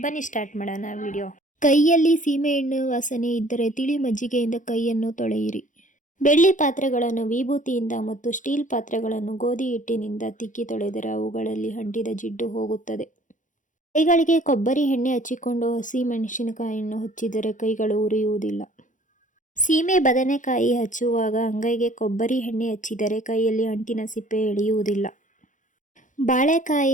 ಬನ್ನಿ ಸ್ಟಾರ್ಟ್ ಮಾಡೋಣ ವಿಡಿಯೋ. ಕೈಯಲ್ಲಿ ಸೀಮೆಎಣ್ಣೆ ವಾಸನೆ ಇದ್ದರೆ ತಿಳಿ ಮಜ್ಜಿಗೆಯಿಂದ ಕೈಯನ್ನು ತೊಳೆಯಿರಿ. ಬೆಳ್ಳಿ ಪಾತ್ರೆಗಳನ್ನು ವಿಭೂತಿಯಿಂದ ಮತ್ತು ಸ್ಟೀಲ್ ಪಾತ್ರೆಗಳನ್ನು ಗೋಧಿ ಹಿಟ್ಟಿನಿಂದ ತಿಕ್ಕಿ ತೊಳೆದರೆ ಅವುಗಳಲ್ಲಿ ಅಂಟಿದ ಜಿಡ್ಡು ಹೋಗುತ್ತದೆ. ಕೈಗಳಿಗೆ ಕೊಬ್ಬರಿ ಎಣ್ಣೆ ಹಚ್ಚಿಕೊಂಡು ಹಸಿ ಮೆಣಸಿನಕಾಯಿಯನ್ನು ಹಚ್ಚಿದರೆ ಕೈಗಳು ಉರಿಯುವುದಿಲ್ಲ. ಸೀಮೆ ಬದನೆಕಾಯಿ ಹಚ್ಚುವಾಗ ಅಂಗೈಗೆ ಕೊಬ್ಬರಿ ಎಣ್ಣೆ ಹಚ್ಚಿದರೆ ಕೈಯಲ್ಲಿ ಅಂಟಿನ ಸಿಪ್ಪೆ ಎಳೆಯುವುದಿಲ್ಲ.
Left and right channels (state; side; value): late; right; 0.37 ms